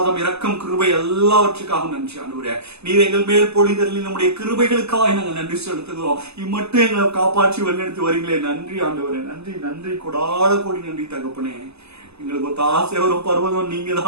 இரக்கம், கிருபை எல்லாவற்றுக்காக நன்றி ஆண்டவரே. நீர் எங்கள் மேல் பொழிதலில் நம்முடைய கிருபைகளுக்காக நாங்கள் நன்றி செலுத்துகிறோம். இம்மட்டும் எங்களை காப்பாற்றி வழிநடத்தி வரீங்களே, நன்றி ஆண்டவரே. நன்றி நன்றி, கொடாத கோடி நன்றி தகப்பனே. எங்களுக்கு ஒத்தாசை வரும் பர்வதம் நீங்க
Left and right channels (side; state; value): left; late; 0.79 ms